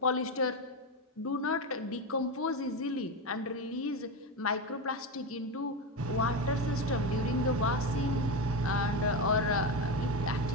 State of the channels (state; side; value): normal; both; correlation 0.15